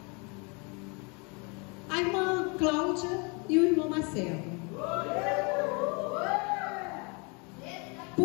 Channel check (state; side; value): quieter; right; 31.8 dB